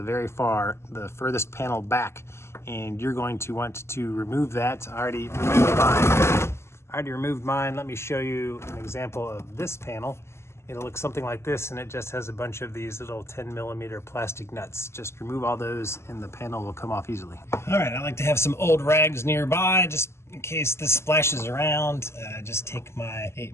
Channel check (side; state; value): right; late; 0.13 ms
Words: furthest panel back, and you're going to want to remove that. I already removed mine. Let me show you an example of this panel. It'll look something like this, and it just has a bunch of these little 10 millimeter plastic nuts. Just remove all those and the panel will come off easily. All right, I like to have some old rags nearby just in case this splashes around. Just take my